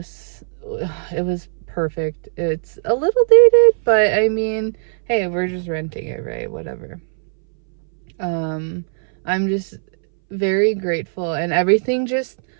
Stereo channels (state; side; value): silent; left; 62 dB below the other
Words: it was perfect. It's a little dated, but I mean, hey, we're just renting it, right? Whatever. I'm just very grateful, and everything just